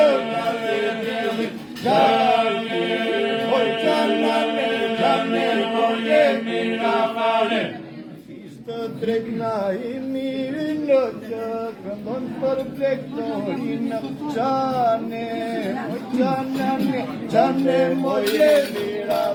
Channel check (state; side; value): identical; both; correlation 1.00